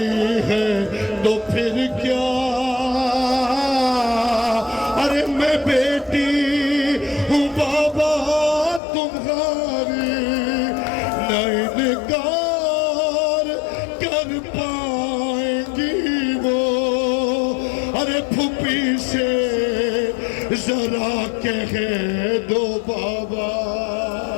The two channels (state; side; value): drops out; right; at 8.8 s